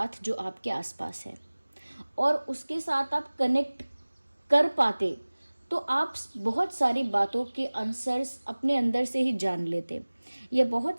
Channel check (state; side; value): inverted; both; correlation -1.00